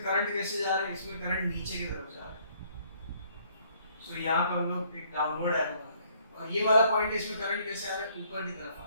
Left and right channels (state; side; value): inverted; both; correlation -0.64